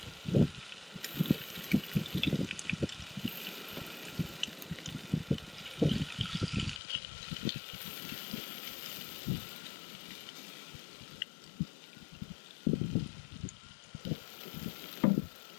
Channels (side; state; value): right; drops out; at 6.8 s